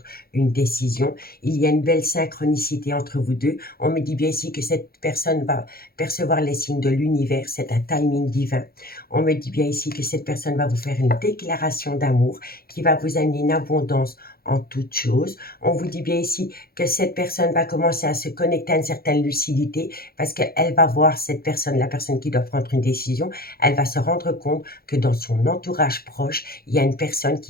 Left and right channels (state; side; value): late; right; 0.44 ms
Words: une décision. Il y a une belle synchronicité entre vous deux. On me dit bien ici que cette personne va percevoir les signes de l'univers. C'est un timing divin. On me dit bien ici que cette personne va vous faire une déclaration d'amour qui va vous amener une abondance en toutes choses. On vous dit bien ici que cette personne va commencer à se connecter à une certaine lucidité parce qu'elle va voir cette personne, la personne qui doit prendre une décision, elle va se rendre compte que dans son entourage proche, il y a une personne